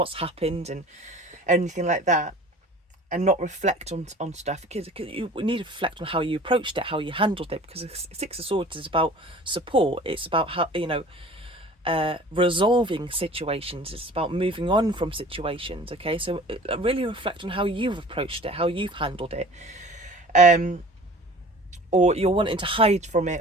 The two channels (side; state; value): both; normal; correlation 0.44